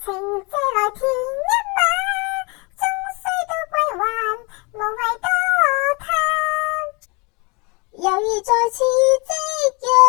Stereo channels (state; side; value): quieter; right; 29.3 dB